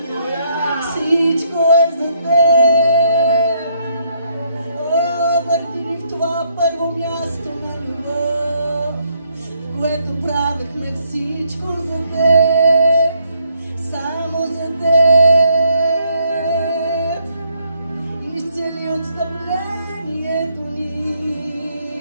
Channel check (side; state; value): both; inverted; correlation -0.72